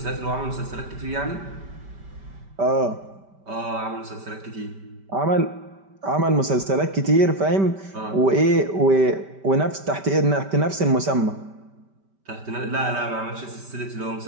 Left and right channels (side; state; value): left; late; 5.1 ms